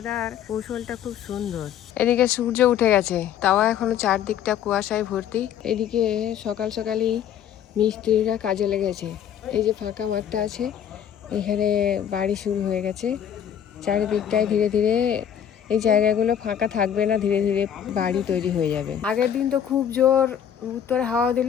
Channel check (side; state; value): right; quieter; 9.4 dB